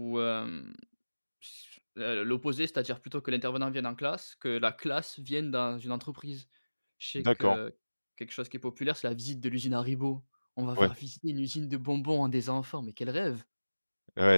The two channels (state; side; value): inverted; both; correlation -1.00